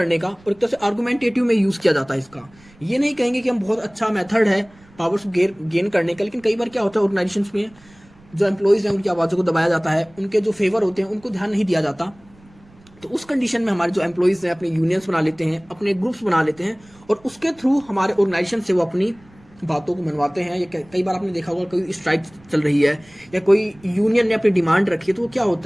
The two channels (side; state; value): right; noise; rumble, 27 dB below the sound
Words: का, और एक तरह से आर्गुमेंटेटिव में यूज़ किया जाता है इसका। ये नहीं कहेंगे कि हम बहुत अच्छा मेथड है पावर को गेन करने का, लेकिन कई बार क्या होता है ऑर्गेनाइजेशंस में जो एम्प्लॉयज़ हैं उनकी आवाज़ों को दबाया जाता है, उनके जो फेवर होते हैं उनको ध्यान नहीं दिया जाता। तो उस कंडीशन में हमारे जो एम्प्लॉयज़ हैं अपने यूनियंस बना लेते हैं, अपने ग्रुप्स बना लेते हैं, और उसके थ्रू हमारे ऑर्गेनाइजेशन से वो अपनी बातों को मनवाते हैं, या कई बार आपने देखा होगा कोई स्ट्राइक चल रही है या कोई यूनियन ने अपनी डिमांड रखी है, तो वो क्या